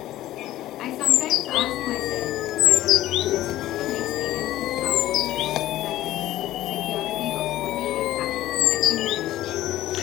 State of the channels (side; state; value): right; quieter; 14.5 dB